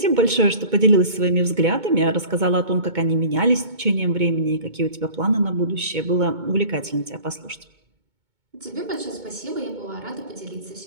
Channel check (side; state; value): left; late; 2.2 ms